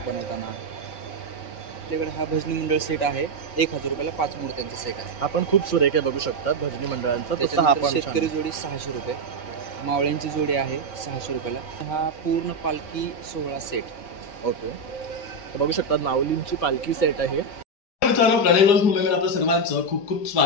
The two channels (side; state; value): right; late; 4.7 ms